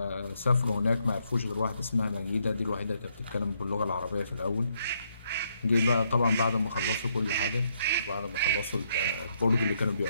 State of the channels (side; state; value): both; inverted; correlation -0.75